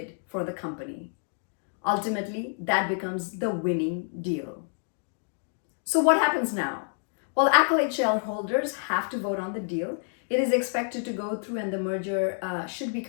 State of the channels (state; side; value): silent; right; 59 dB below the other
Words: for the company. Ultimately, that becomes the winning deal. So what happens now? Well, Accolade shareholders have to vote on the deal. It is expected to go through and the merger should be